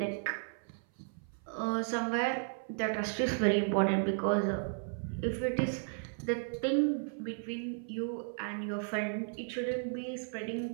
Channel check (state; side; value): silent; left; 55 dB below the other